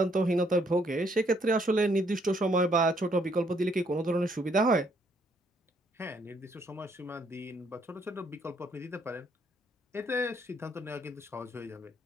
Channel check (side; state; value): both; normal; correlation 0.69